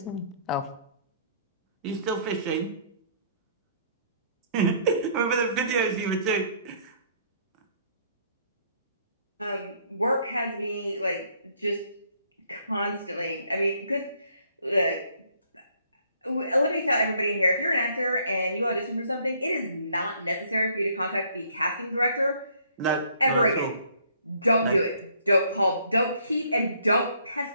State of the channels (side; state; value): both; inverted; correlation -0.64